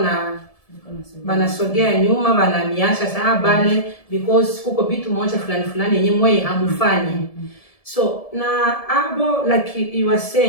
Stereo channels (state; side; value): late; right; 1.7 ms